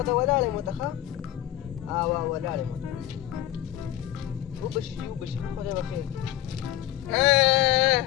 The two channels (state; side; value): quieter; right; 13.4 dB